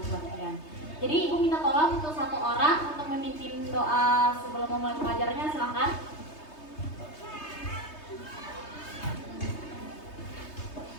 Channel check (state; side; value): late; right; 3.2 ms